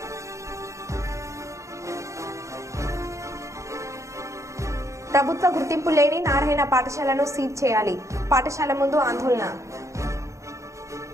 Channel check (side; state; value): left; late; 0.15 ms